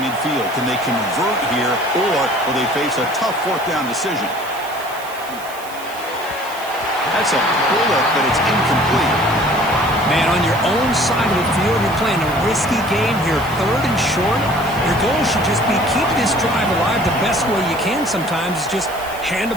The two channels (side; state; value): right; noise; hiss, 17 dB below the sound